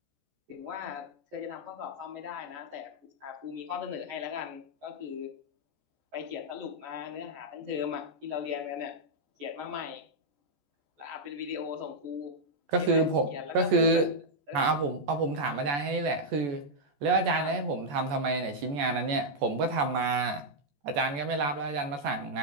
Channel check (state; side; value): late; left; 14 ms